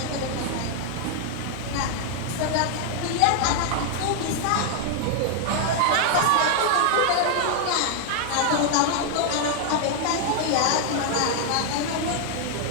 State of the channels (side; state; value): both; different; correlation 0.00